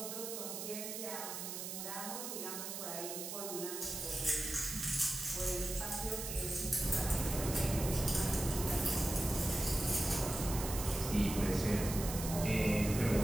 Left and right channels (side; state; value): right; noise; hiss, 6 dB below the sound